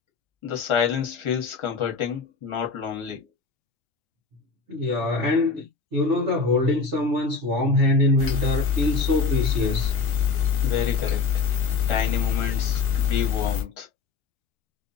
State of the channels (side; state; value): right; quieter; 4.6 dB